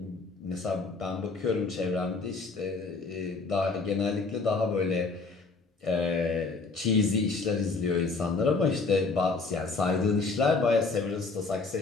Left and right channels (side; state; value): right; quieter; 4.0 dB